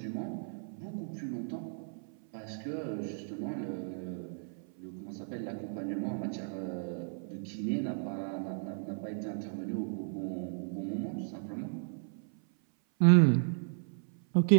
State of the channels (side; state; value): left; silent; 55 dB below the other